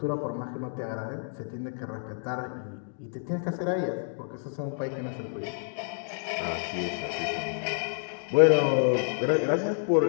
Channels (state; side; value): silent; right; digital silence